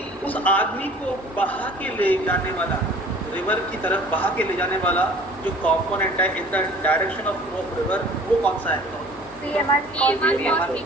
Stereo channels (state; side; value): normal; both; correlation 0.48